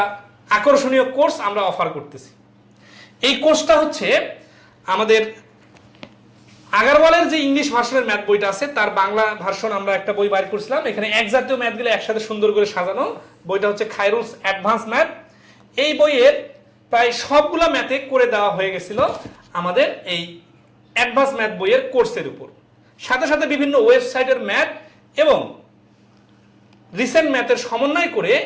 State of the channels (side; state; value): both; identical; correlation 1.00